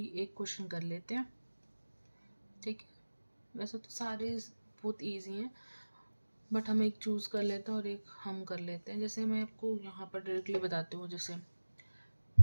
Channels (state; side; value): inverted; both; correlation -1.00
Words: एक क्वेश्चन कर लेते हैं। ठीक है, वैसे तो सारे बहुत ईजी हैं, बट हम एक चूज़ कर लेते हैं और एक हम कर लेते हैं। जैसे मैं आपको यहाँ पर डायरेक्टली बताती हूँ, जैसे